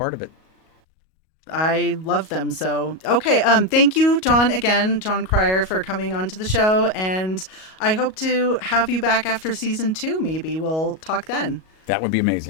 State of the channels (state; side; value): late; right; 38 ms